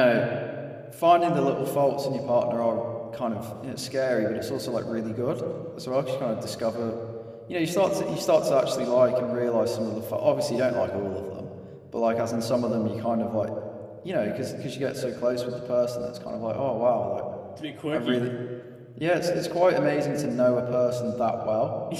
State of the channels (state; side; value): identical; both; correlation 1.00